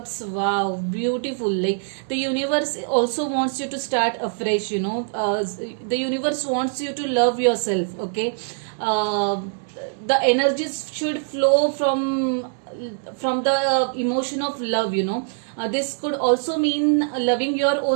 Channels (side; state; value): left; silent; digital silence